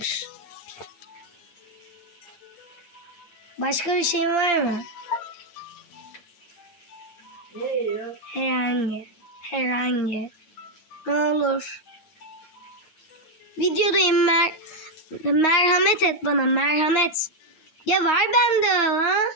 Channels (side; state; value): right; late; 8.7 ms